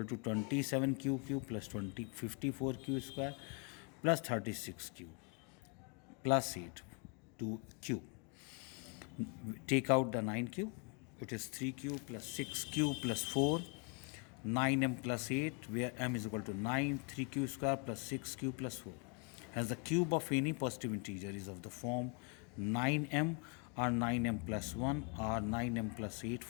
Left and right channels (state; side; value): quieter; right; 36.5 dB